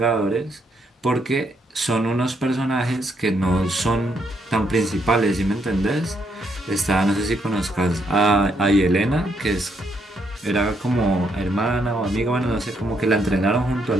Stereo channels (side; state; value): both; normal; correlation 0.75